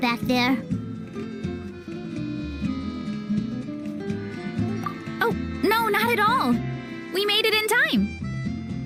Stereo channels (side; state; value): both; identical; correlation 1.00